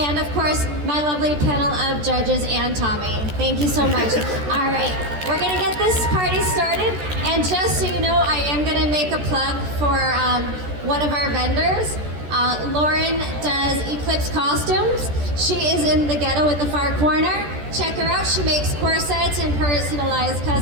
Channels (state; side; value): late; left; 14 ms